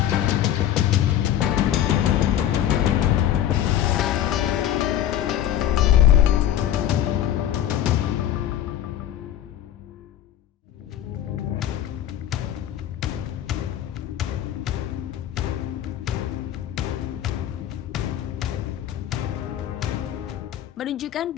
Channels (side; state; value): right; quieter; 11.4 dB